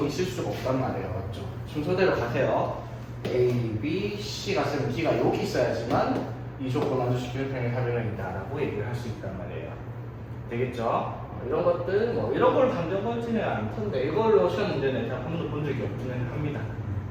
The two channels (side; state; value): both; identical; correlation 1.00